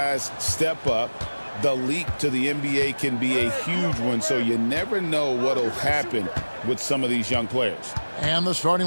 step up. The leap to the NBA can be a huge one, so you never know what will happen with some of these young players. And the starting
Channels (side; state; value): both; inverted; correlation -1.00